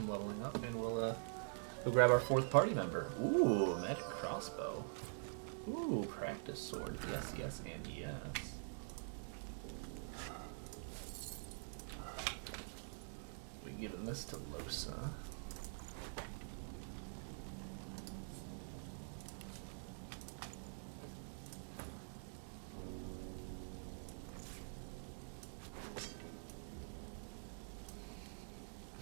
leveling up, and we'll grab our 4th party member. Ooh, magic crossbow. Ooh, practice sword. Yes, yes, and yes. We giving this to Losa.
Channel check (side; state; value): left; silent; digital silence